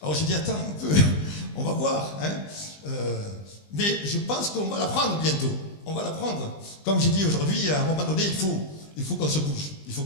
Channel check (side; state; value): right; late; 20 ms